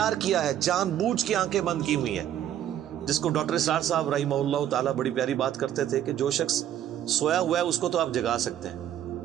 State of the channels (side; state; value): left; quieter; 11.0 dB